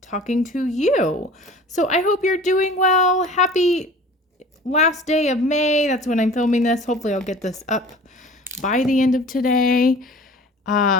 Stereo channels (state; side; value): normal; both; correlation 0.44